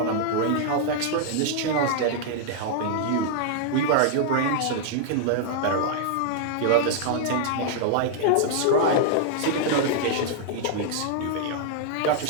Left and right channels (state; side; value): different; both; correlation -0.01